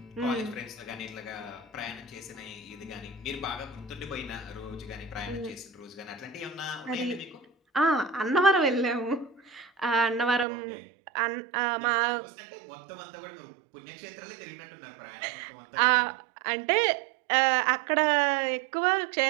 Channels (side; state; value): left; drops out; at 10.5 s